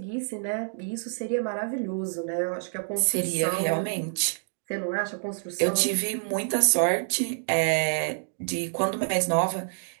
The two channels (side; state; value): left; silent; digital silence